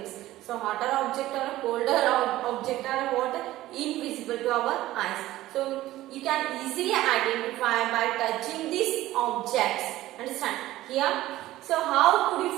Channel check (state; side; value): quieter; left; 15.7 dB